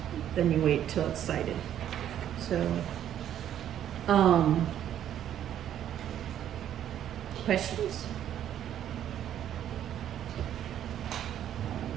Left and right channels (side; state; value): left; quieter; 10.6 dB